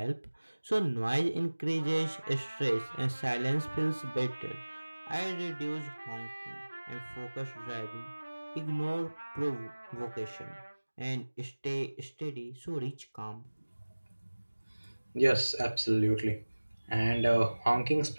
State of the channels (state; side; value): inverted; both; correlation -1.00